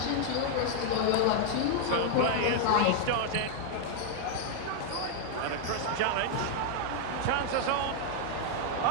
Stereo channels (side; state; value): both; different; correlation 0.00